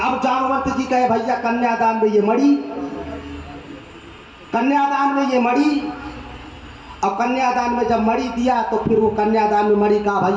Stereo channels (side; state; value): both; identical; correlation 1.00